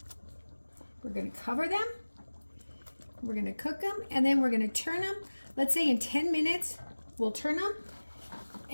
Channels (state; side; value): inverted; both; correlation -1.00